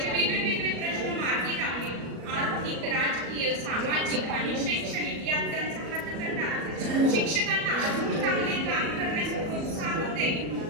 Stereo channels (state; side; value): late; left; 37 ms